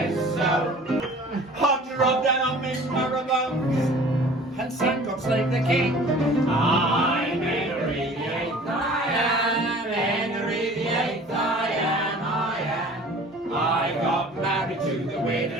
so. Hunter of them on Miss Marabone and sang God Save the King. I'm Henry the Eighth. I am Henry the Eighth. I am. I got married to the widow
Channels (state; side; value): normal; both; correlation 0.46